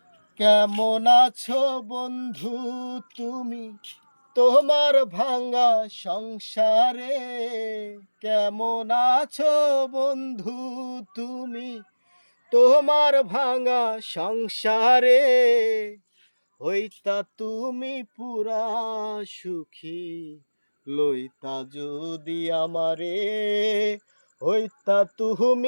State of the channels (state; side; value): inverted; both; correlation -1.00